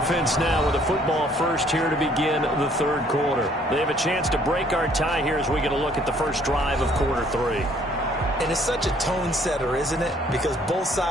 now with the football first here to begin the third quarter. They have a chance to break our tie here as we get a look at the first drive of quarter 3. And it's such a tone setter, isn't it? Because both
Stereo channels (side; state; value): both; normal; correlation 0.61